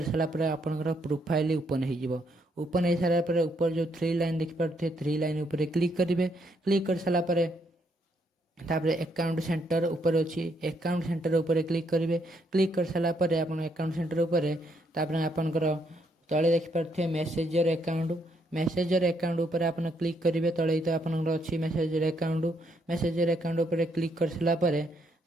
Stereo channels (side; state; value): both; normal; correlation 0.74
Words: सारा पर आपणकर प्रोफाइल ओपन हो। ओपन हो सारा पर ऊपर जो 3 लाइन देखिपे 3 लाइन ऊपर क्लिक करेंगे। क्लिक कर सारा पर तापरे अकाउंट सेंटर ऊपर अच्छी अकाउंट सेंटर ऊपर क्लिक करेंगे। क्लिक कर सारा पर आप अकाउंट सेंटर ऊपर तापरे आपणकर तले देखिपे मेसेजर अकाउंट ऊपर आप क्लिक करेंगे। तले तो आपंकर अच्छी मेसेजर अकाउंट ऊपर क्लिक कर सारा पर